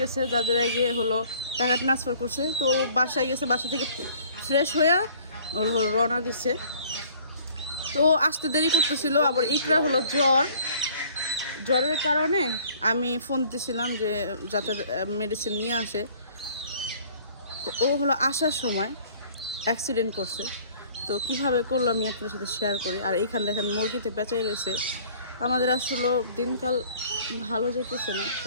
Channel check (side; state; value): both; inverted; correlation -0.54